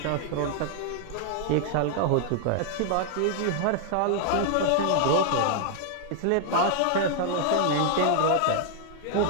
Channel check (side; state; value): both; different; correlation 0.00